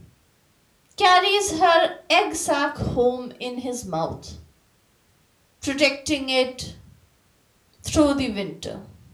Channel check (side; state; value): both; identical; correlation 1.00